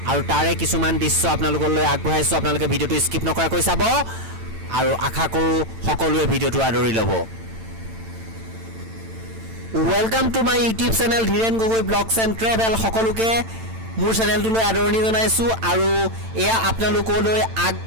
আৰু তাৰে কিছুমান দৃশ্য आपनालोकলৈ আগবঢ়াইছো आपनालोকে ভিডিওটো স্কিপ নকৰাকৈ চাব আৰু আশা কৰো সকলোৱে ভিডিওটো আদৰি ল'ব welcome to my YouTube channel Dhiren Gogoi blogs and travel সকলোকে মোৰ চেনেলটোলৈ আদৰণি জনাইছো আৰু এয়া आपनालोकলৈ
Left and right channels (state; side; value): late; left; 8.9 ms